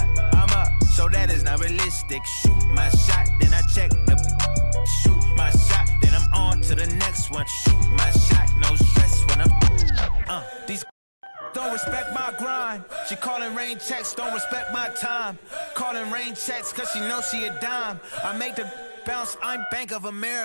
I'm up, so that is not realistic. Shoot my shot, then I check the. Shoot my shot, then I'm on to the next one. Shoot my shot, no stress when I'm. These don't respect my grind. She calling rain checks, don't respect my time. Calling rain checks, cause she knows she a dime. I make the bounce, I'm Bank of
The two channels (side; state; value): both; inverted; correlation -1.00